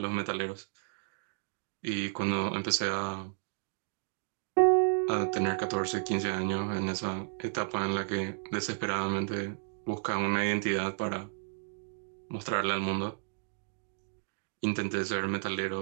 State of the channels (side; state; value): left; silent; digital silence